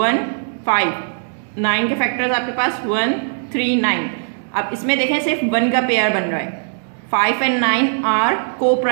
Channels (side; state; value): left; silent; digital silence